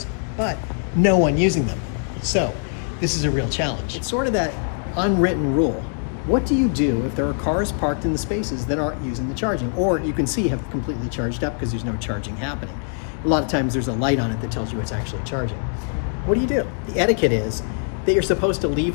but no one using them. So this is a real challenge. It's sort of that unwritten rule. What do you do if there are cars parked in the spaces that aren't using the charging, or you can see have completely charged up because there's no charging happening? A lot of times there's a light on it that tells you it's actually charging. What do you do? The etiquette is that you're supposed to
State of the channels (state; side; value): silent; right; 60 dB below the other